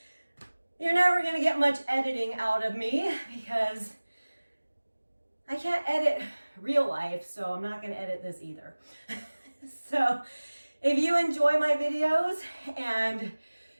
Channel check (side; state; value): both; inverted; correlation -1.00